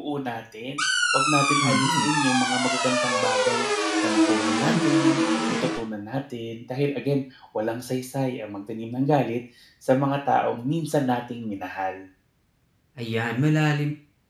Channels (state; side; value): identical; both; correlation 1.00